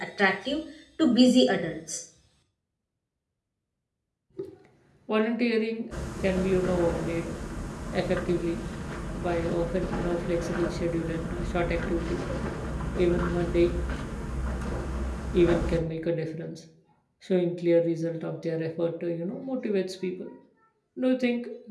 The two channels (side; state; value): both; identical; correlation 1.00